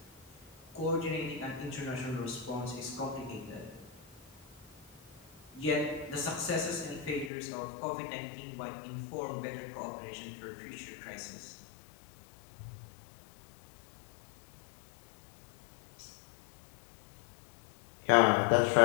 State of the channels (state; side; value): drops out; right; at 7.3 s